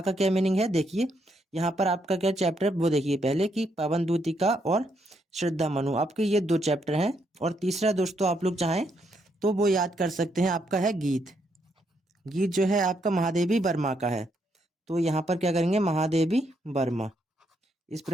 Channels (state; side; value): normal; both; correlation 0.76